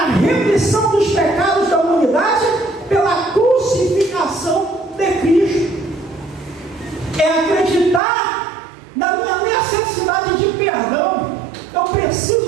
remissão dos pecados da humanidade pela crucificação de Cristo. É acreditar na minha necessidade de perdão. Eu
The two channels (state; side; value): drops out; left; at 8.0 s